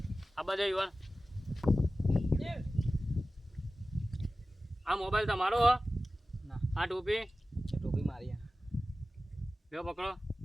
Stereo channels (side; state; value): both; normal; correlation 0.95